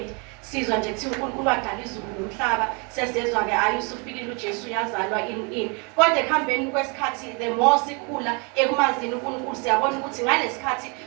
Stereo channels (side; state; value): left; quieter; 32.9 dB